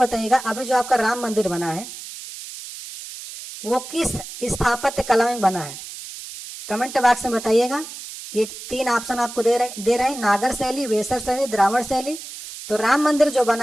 अभी जो आपका राम मंदिर बना है वो किस स्थापत्य कला में बना है, कमेंट बॉक्स में बताइएगा। ये 3 ऑप्शन आपको दे रहे हैं, नागर शैली, वेसर शैली, द्राविड़ शैली। तो राम मंदिर जो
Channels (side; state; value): right; noise; hiss, 12 dB below the sound